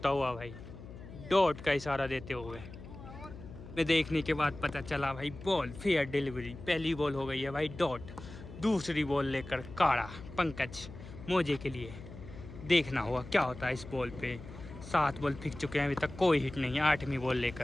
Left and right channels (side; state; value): left; noise; hum, 14 dB below the sound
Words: हुआ भाई, डॉट का इशारा देते हुए मैं देखने के बाद पता चला भाई बॉल फेयर डिलीवरी। पहली बॉल हो गई है भाई डॉट। दूसरी बॉल लेकर काड़ा पंकज मोजे के लिए। देखना होगा क्या होता है इस बॉल पे। 7 बॉल फेंक चुके हैं, अभी तक कोई हिट नहीं है। 8वीं बॉल